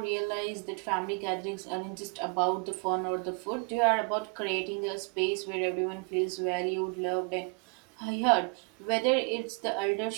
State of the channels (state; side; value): quieter; left; 32.9 dB